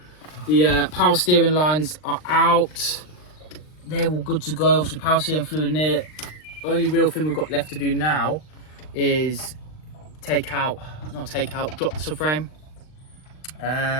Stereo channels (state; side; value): late; right; 39 ms